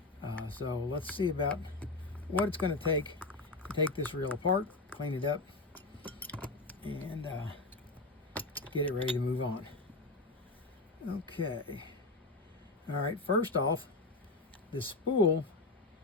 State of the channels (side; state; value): right; quieter; 3.2 dB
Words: So let's see about what it's going to take this reel apart, clean it up, and get it ready to move on. Okay. All right, first off, the spool